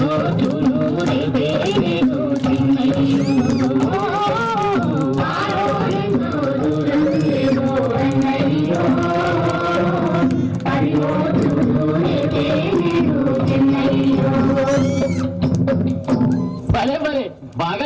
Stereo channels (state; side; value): identical; both; correlation 1.00